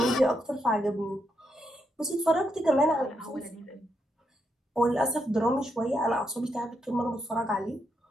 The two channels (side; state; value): both; normal; correlation 0.81